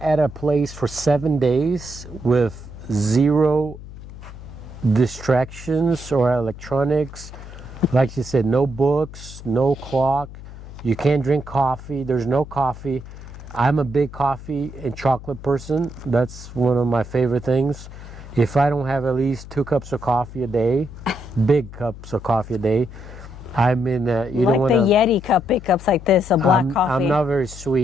at a place for 7 days with 0 distractions or electronics, like you said, no books, no clock, you can't drink coffee, there's no coffee. I'm a big coffee and chocolate person. That's one of my favorite things. If I don't have at least 2 cups of coffee a day, big cups of coffee a day, I'm in. You don't want like to. the Yeti cup, big cups like this, a black coffee. I'm not very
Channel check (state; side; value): noise; left; hum, 14 dB below the sound